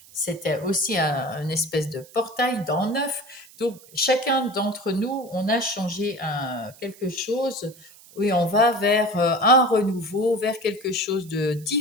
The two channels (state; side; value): noise; right; hiss, 23 dB below the sound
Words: C'était aussi une espèce de portail dans 9. Donc, chacun d'entre nous, on a changé quelque chose et on va vers un renouveau, vers quelque chose de